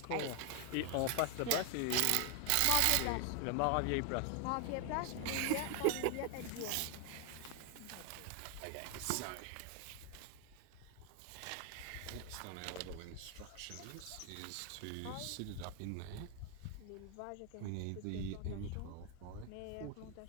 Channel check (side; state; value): both; different; correlation 0.01